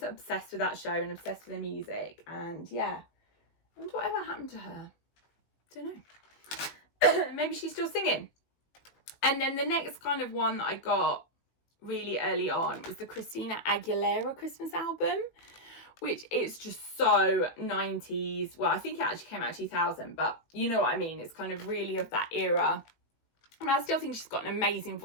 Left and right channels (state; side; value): late; right; 18 ms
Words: obsessed with that show and obsessed with the music. And yeah, I wonder whatever happened to her. Don't know. Maybe she's still singing. And then the next kind of one that I got really early on was the Christina Aguilera Christmas album, which is just so 90s. Well, I think it actually came out 2000, but you know what I mean. It's kind of really of that era. And I still think she's got an amazing